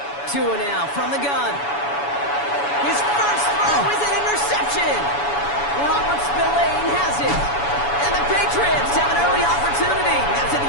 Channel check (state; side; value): late; right; 7.0 ms